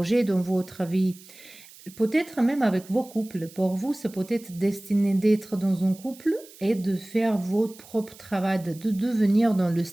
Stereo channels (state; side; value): noise; right; hiss, 21 dB below the sound